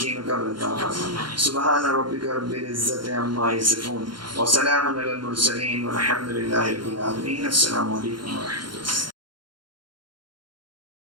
میں قبر عطا فرما. سبحان ربک رب العزت عما یصفون وسلام علی المرسلین والحمد للہ رب العالمین. السلام علیکم ورحمۃ اللہ.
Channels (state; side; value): late; left; 0.72 ms